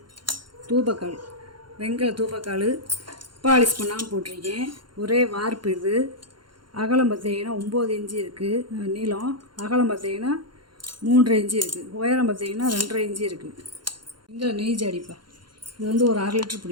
தூபக்கால், வெங்கல தூபக்கால், பாலிஷ் பண்ணாமல் போட்டிருக்கேன். ஒரே வார்ப்பு. இது அகலம் பார்த்தீங்கன்னா 9 இன்ச்சு இருக்குது. நீளம் அகலம் பார்த்தீங்கன்னா 3.5 இன்ச்சு இருக்குது. உயரம் பார்த்தீங்கன்னா 2.5 இன்ச்சு இருக்குது. வெங்கல நெய் ஜாடிப்பா, இது வந்து ஒரு 1/2 லிட்டர்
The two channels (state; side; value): late; left; 0.72 ms